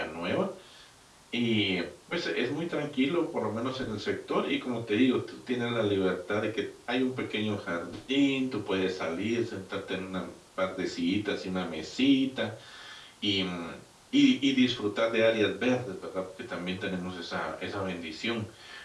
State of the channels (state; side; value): identical; both; correlation 1.00